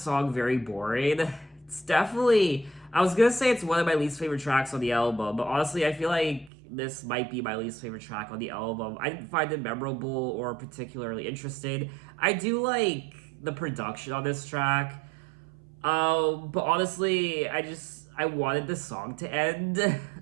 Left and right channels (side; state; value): left; drops out; at 6.5 s